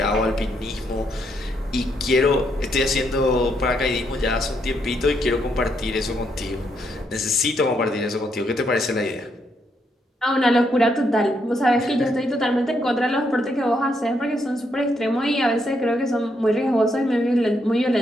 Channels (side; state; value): both; normal; correlation 0.76